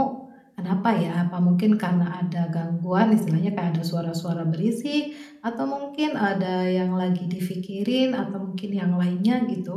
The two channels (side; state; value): both; identical; correlation 1.00